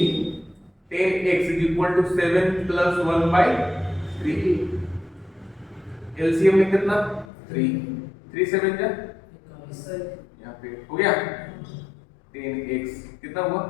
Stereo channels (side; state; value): right; drops out; at 7.2 s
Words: 10x is equal to 7 plus 1/3, LCM में कितना? 3, 3 7 जा, यहाँ पे हो गया 10x कितना हुआ?